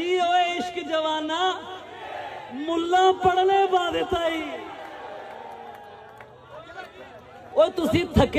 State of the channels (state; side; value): identical; both; correlation 1.00